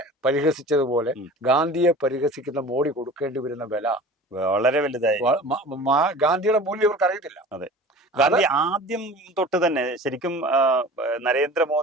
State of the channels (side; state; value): both; normal; correlation 0.40